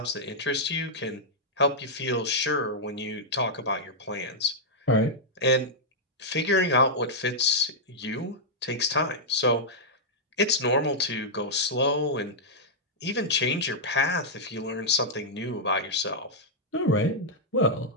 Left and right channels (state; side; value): normal; both; correlation -0.06